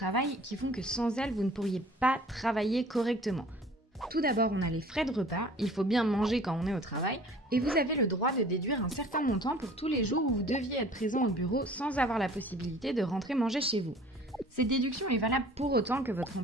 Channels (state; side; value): normal; both; correlation 0.49